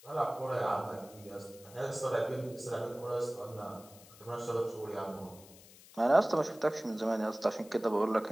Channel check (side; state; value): left; noise; hiss, 21 dB below the sound